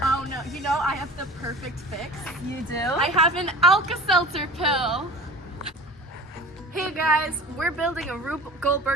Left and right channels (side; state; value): both; normal; correlation 0.40